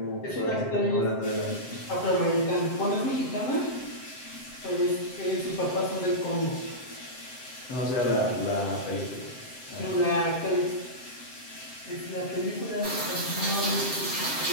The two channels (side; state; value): right; late; 7.6 ms